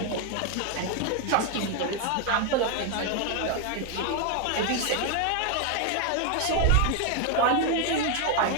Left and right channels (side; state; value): both; different; correlation 0.01